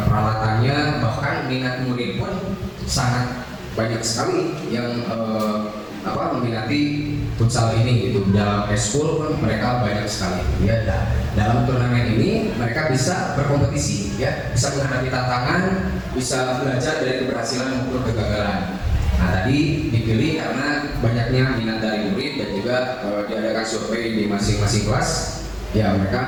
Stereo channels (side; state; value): both; identical; correlation 1.00